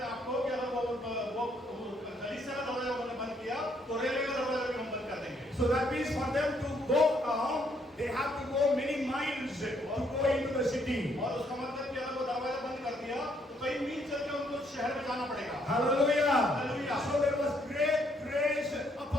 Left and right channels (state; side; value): normal; both; correlation 0.70